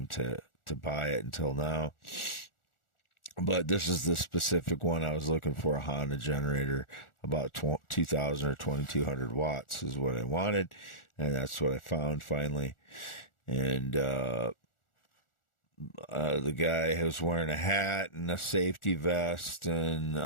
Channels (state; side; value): late; right; 1.4 ms